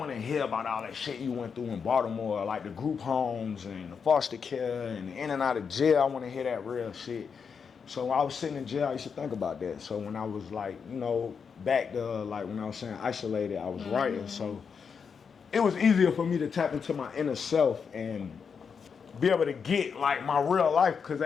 to hear about all that shit you went through in Baltimore, like the group homes and the foster care and the in and out of jail. I want to hear that real shit. So when I was sitting in jail, I used to think about that. So when I was like, you know, back to like when I was saying isolated, I was writing. So it was easier for me to tap into my inner self and be able to get like my real life, because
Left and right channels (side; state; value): right; quieter; 6.2 dB